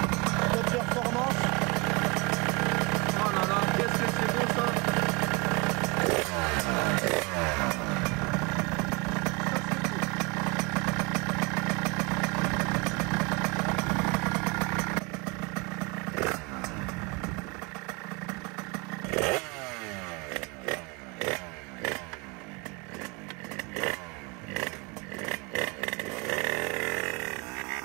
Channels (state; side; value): quieter; left; 28.3 dB